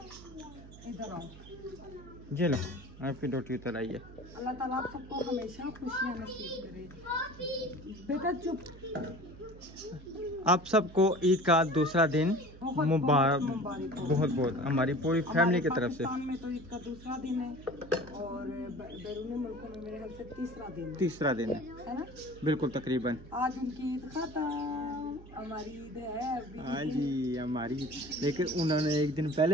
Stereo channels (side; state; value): right; noise; hum, 18 dB below the sound